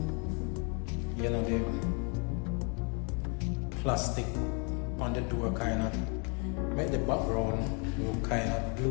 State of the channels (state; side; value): quieter; right; 36.1 dB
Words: You know, the plastic on the door kind of make the background look kind of